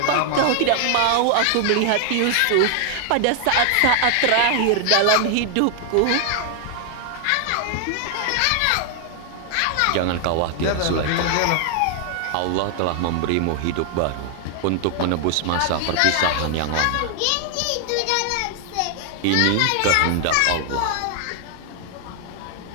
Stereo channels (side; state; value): both; different; correlation 0.00